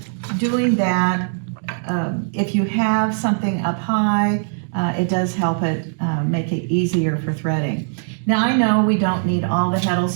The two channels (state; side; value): silent; left; digital silence